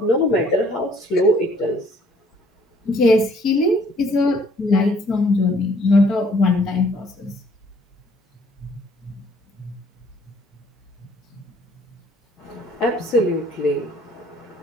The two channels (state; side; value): normal; both; correlation 0.61